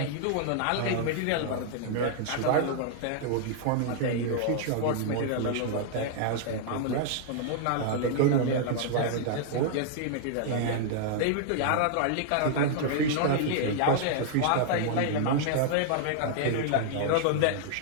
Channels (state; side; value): different; both; correlation -0.01